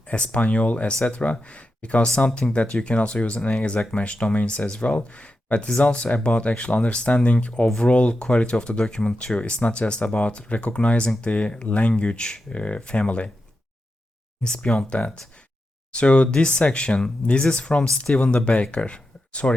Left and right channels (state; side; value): normal; both; correlation 0.89